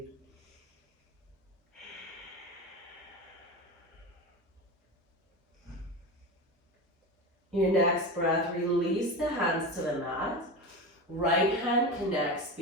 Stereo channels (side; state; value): both; normal; correlation 0.24